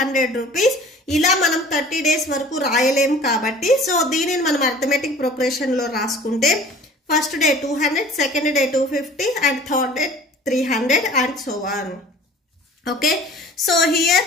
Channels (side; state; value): both; normal; correlation 0.46